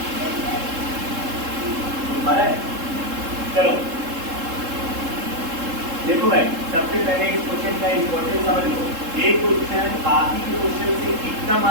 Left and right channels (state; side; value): late; left; 3.7 ms